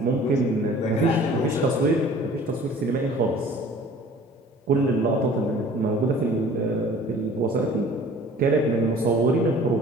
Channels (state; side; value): normal; both; correlation 0.48